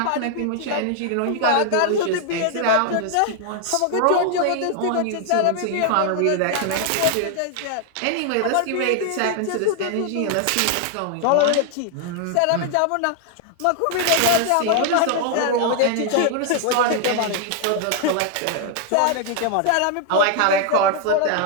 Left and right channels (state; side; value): different; both; correlation 0.00